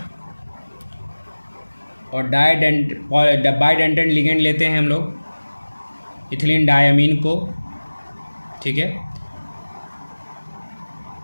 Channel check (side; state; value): both; inverted; correlation -1.00